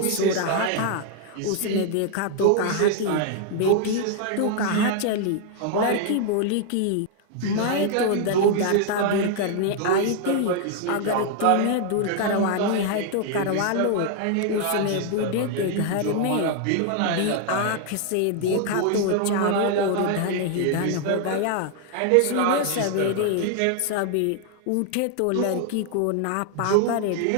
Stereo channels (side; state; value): both; different; correlation 0.00